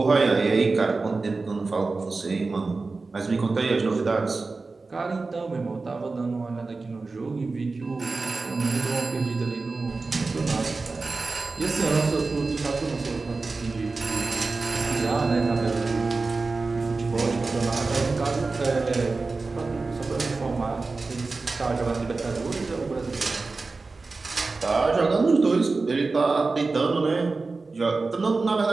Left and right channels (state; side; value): quieter; left; 3.8 dB